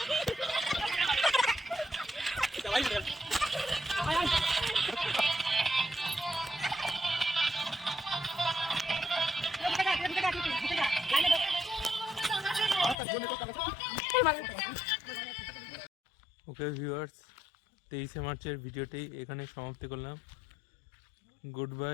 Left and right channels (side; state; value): right; drops out; at 13.0 s